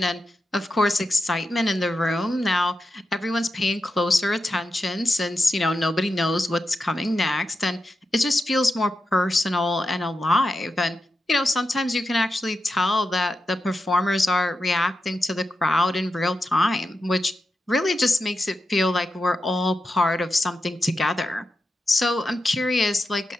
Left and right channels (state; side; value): normal; both; correlation 0.89